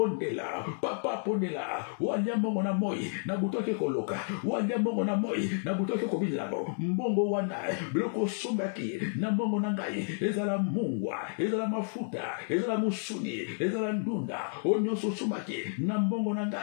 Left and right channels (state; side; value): silent; right; digital silence